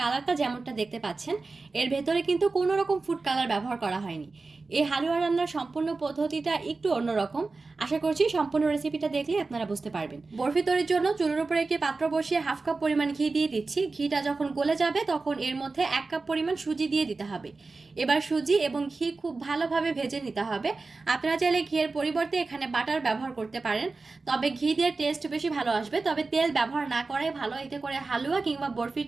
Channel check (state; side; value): quieter; left; 3.8 dB